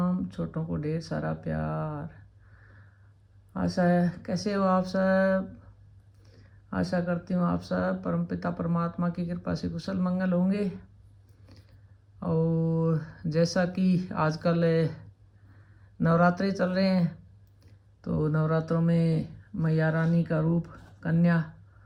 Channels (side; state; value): both; identical; correlation 1.00